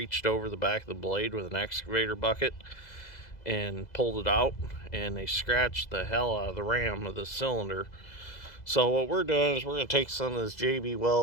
over the back of the blade with an excavator bucket and pulled it out, and they scratched the hell out of the ram of the cylinder. So what we're doing is we're going to take some of this JB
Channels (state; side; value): late; right; 2.0 ms